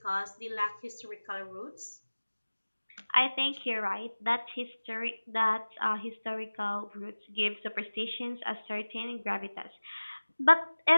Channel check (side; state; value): both; inverted; correlation -1.00